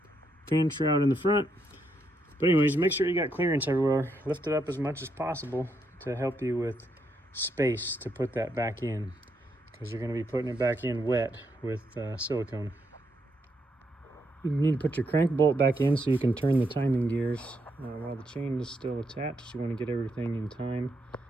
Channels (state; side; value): normal; both; correlation 0.79